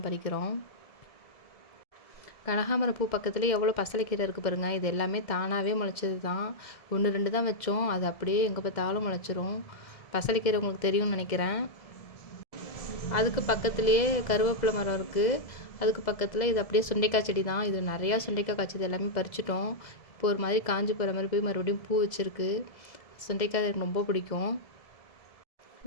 பறிக்கிறோம். கனகாம்பரம் பூ பக்கத்துலேயே எவ்வளோ பசலைக்கீரை இருக்குது பாருங்கள். இது எல்லாமே தானாகவே முளைச்சது தான். 1 2 தான் வச்சோம், அது அப்படியே எங்கே பார்த்தாலும் முளைச்சிரும். பசலைக்கீரை உங்களுக்கு தெரியும்னு நினைக்கிறேன். அதுக்கு பக்கத்துலேயே கருவேப்பிலை மரம் இருக்குது. அதுக்கு பக்கத்தில் இது அப்படியே சுண்டைக்காய் செடி தான். இது நிறையா சுண்டைக்காய் காய்ச்சது, எல்லாமே பறிச்சிட்டோம். இப்போ ஒரு மாதிரி காஞ்சி போகிற மாதிரி போய் மறுபடியும் பூ வச்சுருக்கு. சுண்டைக்காய் எனக்கு ரொம்ப பிடிக்கும்.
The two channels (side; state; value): right; late; 1.7 ms